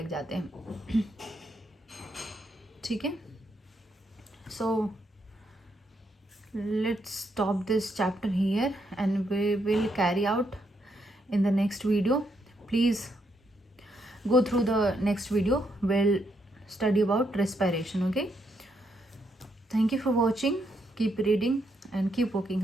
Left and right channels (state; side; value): normal; both; correlation 0.77